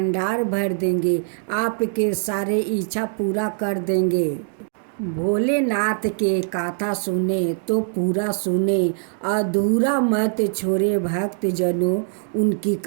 भर देंगे, आपके सारे इच्छा पूरा कर देंगे। भोलेनाथ के कथा सुने तो पूरा सुने, अधूरा मत छोड़े भक्तजनों, उनकी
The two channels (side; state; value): left; silent; 64 dB below the other